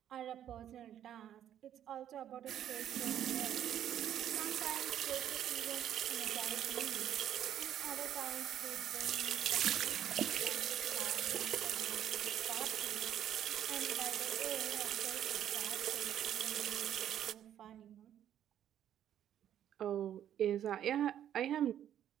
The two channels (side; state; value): left; quieter; 10.6 dB